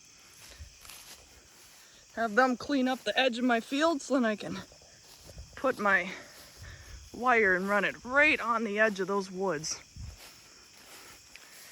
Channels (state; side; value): identical; both; correlation 1.00